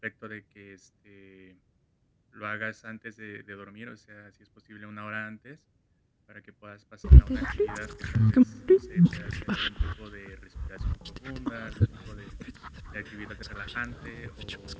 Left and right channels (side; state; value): both; identical; correlation 1.00